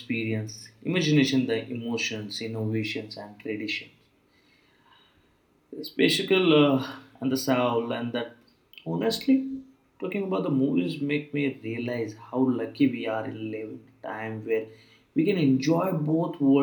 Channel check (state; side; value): identical; both; correlation 1.00